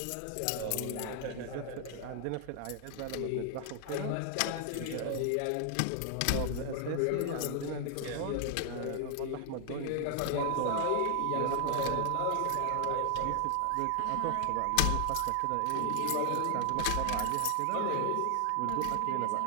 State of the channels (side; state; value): both; different; correlation 0.00